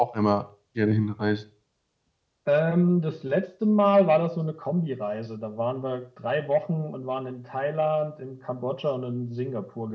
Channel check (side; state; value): both; identical; correlation 1.00